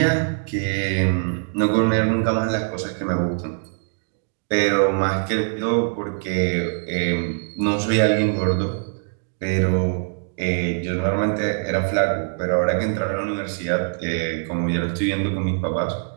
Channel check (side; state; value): left; silent; digital silence